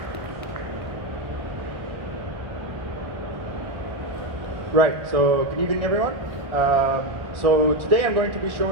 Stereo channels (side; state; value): left; late; 1.4 ms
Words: Right, so good evening everyone. So today I'm going to be